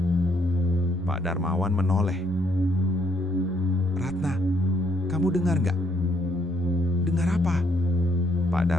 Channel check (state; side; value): normal; both; correlation 0.70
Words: Pak Darmawan menoleh. "Ratna, kamu dengar nggak?" "Dengar apa?" Pak